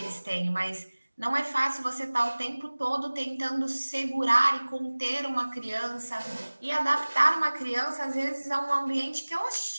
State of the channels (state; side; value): inverted; both; correlation -1.00